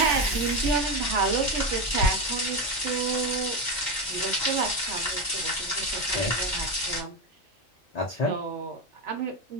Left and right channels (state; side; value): normal; both; correlation 0.14